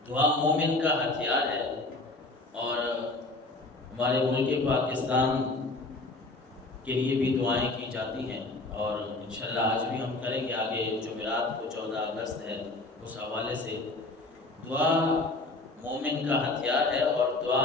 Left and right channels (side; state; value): right; quieter; 3.1 dB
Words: دعا مومن کا ہتھیار ہے، اور ہمارے ملک پاکستان کے لیے بھی دعائیں کی جاتی ہیں، اور انشاءاللہ آج بھی ہم کریں گے۔ آگے جمعرات کو 14 اگست ہے، اس حوالے سے دعا مومن کا ہتھیار ہے، اور دعا